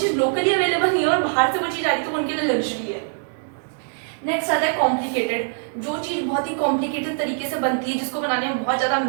लोकली अवेलेबल नहीं है और बाहर से वो चीज़ आ रही तो उनके लिए लग्जरी है। नेक्स्ट आता है कॉम्प्लिकेटेड, जो चीज़ बहुत ही कॉम्प्लिकेटेड तरीके से बनती है, जिसको बनाने में बहुत ज़्यादा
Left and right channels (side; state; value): left; silent; digital silence